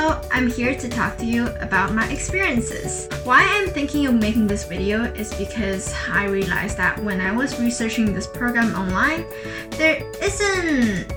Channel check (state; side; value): identical; both; correlation 1.00